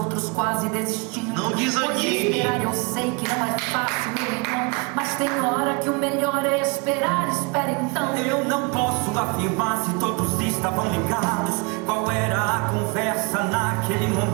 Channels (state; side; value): quieter; left; 30.4 dB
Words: quase desistindo. Não desanime. Pois esperar eu sei que não é fácil, meu irmão, mas tem hora que o melhor é esperar. Espera então. Eu não posso afirmar se todos estavam ligados qual era a conversa naquele